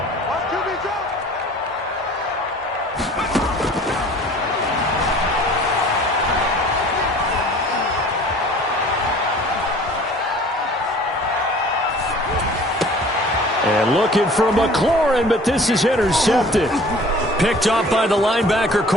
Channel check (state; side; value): normal; both; correlation 0.48